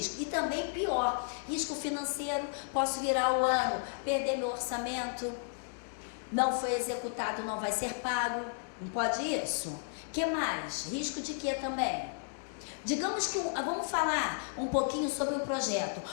E também pior, risco financeiro, posso virar o ano, perder meu orçamento, não foi executado, não vai ser pago, não pode isso? O que mais? Risco de quê também? Digamos que, vamos falar um pouquinho sobre o projeto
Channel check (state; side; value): silent; right; digital silence